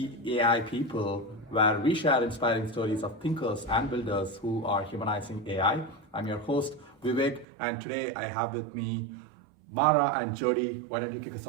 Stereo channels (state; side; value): drops out; left; at 7.5 s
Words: AI People, where we share inspiring stories of thinkers and builders who are humanizing AI. I'm your host, Vivek, and today I have with me Mara and Jody. Why don't you kick us